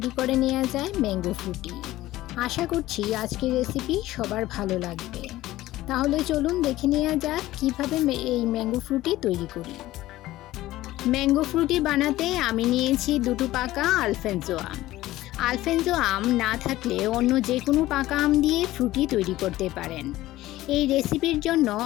করে নেওয়া যায় ম্যাঙ্গো ফ্রুটি। আশা করছি আজকের রেসিপি সবার ভালো লাগবে। তাহলে চলুন দেখে নেওয়া যাক কীভাবে এই ম্যাঙ্গো ফ্রুটি তৈরি করি। ম্যাঙ্গো ফ্রুটি বানাতে আমি নিয়েছি দুটো পাকা আলফেনজো আম। আলফেনজো আম না থাকলে অন্য যে কোনো পাকা আম দিয়ে ফ্রুটি তৈরি করতে পারেন। এই রেসিপির জন্য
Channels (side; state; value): right; quieter; 16.2 dB